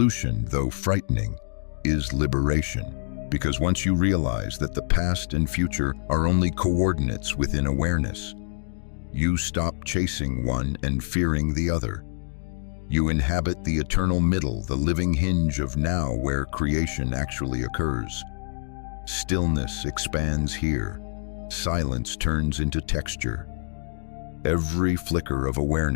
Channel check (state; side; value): silent; right; digital silence